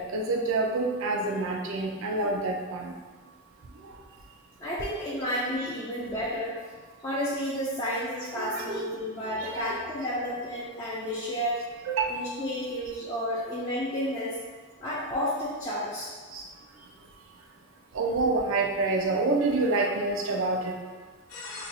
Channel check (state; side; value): normal; both; correlation 0.02